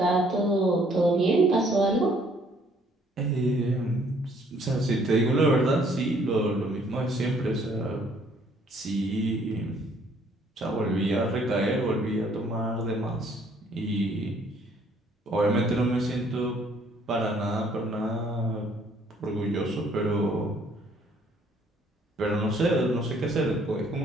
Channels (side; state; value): both; normal; correlation 0.63